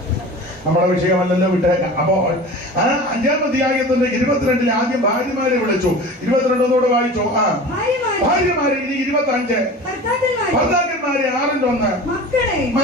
നമ്മുടെ വിഷയമല്ലല്ലോ, വിട്ടേക്കാം. അപ്പോൾ 5-ാം അധ്യായത്തിന്റെ 22 ആദ്യം ഭാര്യമാരെ വിളിച്ചു. 22 വായിച്ചു. ഭാര്യമാരെ. ഇനി 25 ഭർത്താക്കന്മാരെ. 6-ന്റെ 1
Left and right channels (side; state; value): both; normal; correlation 0.36